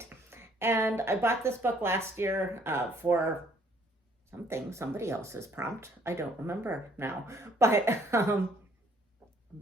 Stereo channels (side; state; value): both; normal; correlation 0.63